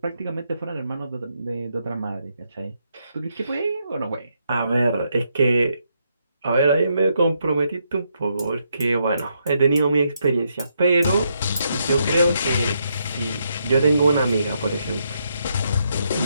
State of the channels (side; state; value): both; inverted; correlation -0.78